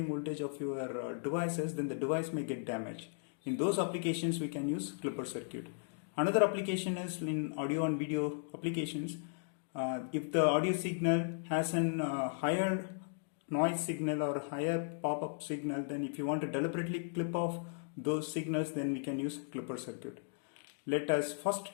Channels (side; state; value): right; silent; digital silence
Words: voltage of your devices, then the device may get damaged. In those applications, we can use clipper circuit. Another application is in audio and video applications. If the audio signal has an higher noise signal or higher pop-up signal, then if you want to deliberately clip off those signals, then we can use clipper circuit. Let us